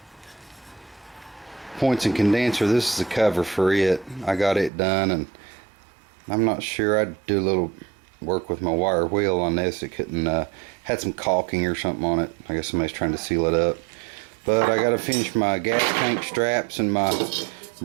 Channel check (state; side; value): drops out; left; at 4.7 s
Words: points and condenser. This is the cover for it. I got it done, and I'm not sure. I'd do a little work with my wire wheel on this. It couldn't, had some caulking or something on it. I guess somebody's trying to seal it up. But I got to finish my gas tank straps and my